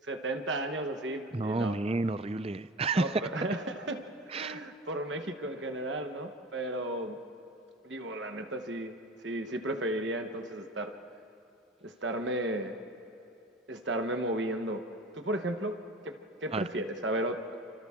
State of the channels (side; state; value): both; normal; correlation 0.35